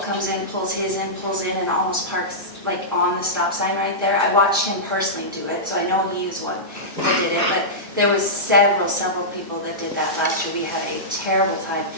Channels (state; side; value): normal; both; correlation -0.14